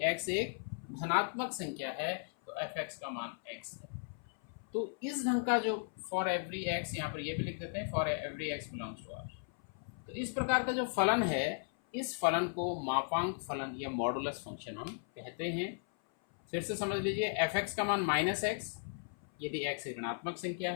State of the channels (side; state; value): right; silent; 54 dB below the other